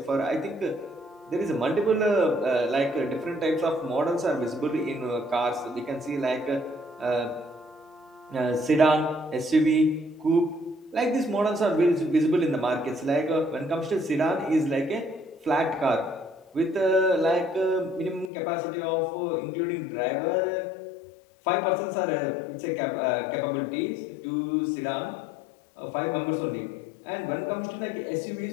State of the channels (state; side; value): drops out; right; at 18.3 s